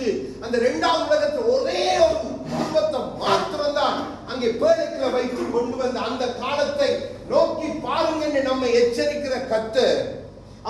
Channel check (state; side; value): identical; both; correlation 1.00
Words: அந்த 2வது உலகத்தில் ஒரே ஒரு குடும்பத்தை மாத்திரம்தான் அங்கே பேழைக்குள்ள வைத்து கொண்டு வந்த அந்த காலத்தை நோக்கி பாருங்க என்று நம்மை எச்சரிக்கிற கர்த்தர்.